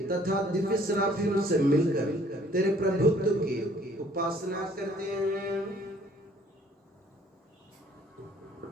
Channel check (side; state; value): both; normal; correlation 0.59